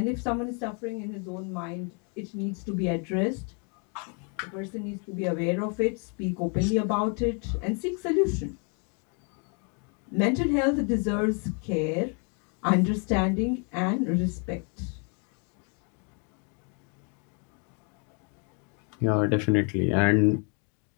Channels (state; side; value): quieter; right; 38.0 dB